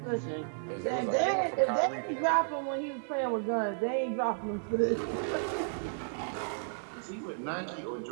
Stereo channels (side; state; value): left; silent; digital silence